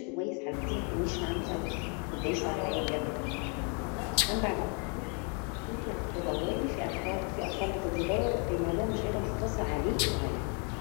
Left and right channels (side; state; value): right; quieter; 37.3 dB